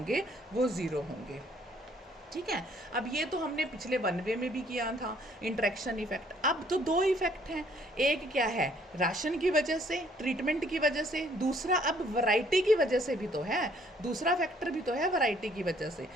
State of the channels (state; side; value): normal; both; correlation 0.63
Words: वो ज़ीरो होंगे, ठीक है। अब ये तो हमने पिछले वन वे में भी किया था, इंट्रैक्शन इफेक्ट। अब तो दो इफेक्ट हैं, एक क्या है राशन की वजह से, ट्रीटमेंट की वजह से, दूसरा अब वैरायटी की वजह से भी तो है, दूसरा फैक्टर भी तो है वैरायटी की वजह से।